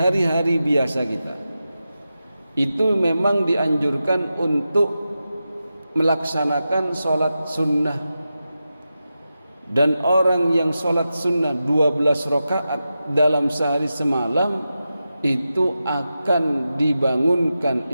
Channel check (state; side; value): inverted; both; correlation -0.91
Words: biasa kita, itu memang dianjurkan untuk melaksanakan sholat sunnah. Dan orang yang sholat sunnah 12 rakaat dalam sehari semalam, itu akan dibangunkan